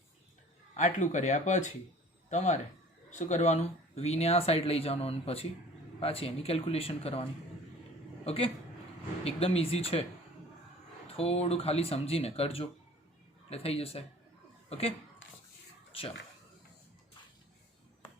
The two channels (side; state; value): both; normal; correlation 0.48